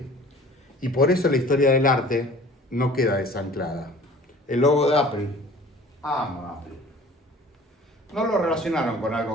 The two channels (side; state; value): both; normal; correlation 0.47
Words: Y por eso la historia del arte no queda desanclada. El logo de Apple, amo Apple. No lo relacionaron con